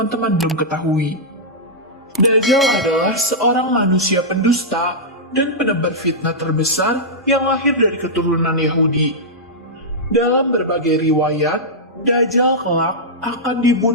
belum ketahui. Dajjal adalah seorang manusia pendusta dan penebar fitnah terbesar yang lahir dari keturunan Yahudi. Dalam berbagai riwayat, Dajjal kelak akan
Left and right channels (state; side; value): normal; both; correlation -0.10